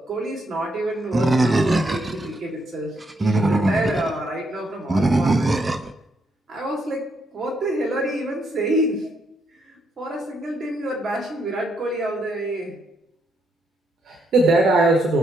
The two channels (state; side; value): normal; both; correlation 0.76